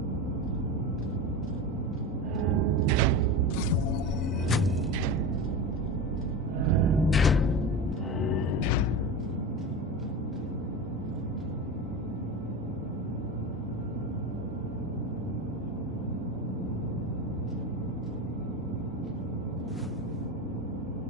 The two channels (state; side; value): normal; both; correlation 0.24